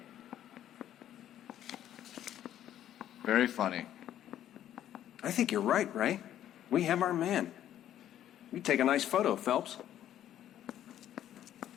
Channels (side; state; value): right; quieter; 11.4 dB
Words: Very funny. I think you're right, Ray. We have our man. You take a nice photo, Phelps.